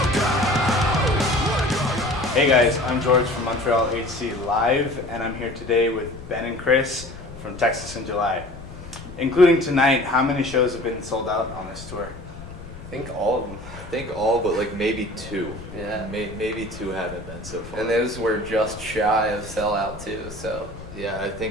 Hey guys, I'm George from Montreal HC Live, and I'm here today with Ben and Chris from Texas in July. Including tonight, how many shows have been sold out on this tour? I think all of them. I think all but like maybe two. Yeah. Maybe two haven't been so far. And those were just shy of sellout too, so. Yeah, I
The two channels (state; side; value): noise; left; rumble, 15 dB below the sound